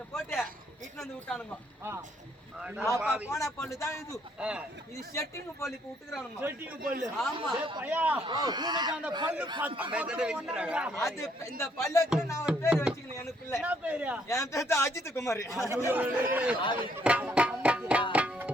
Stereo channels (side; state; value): both; normal; correlation 0.69